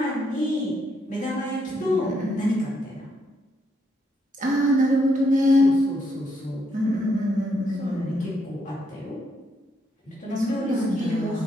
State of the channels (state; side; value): normal; both; correlation 0.75